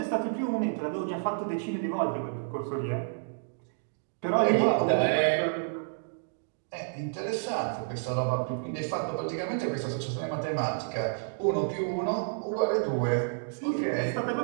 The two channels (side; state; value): left; silent; digital silence